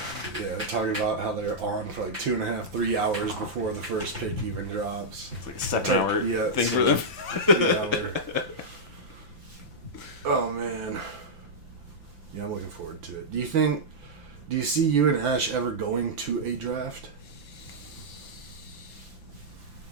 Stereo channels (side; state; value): left; late; 5.9 ms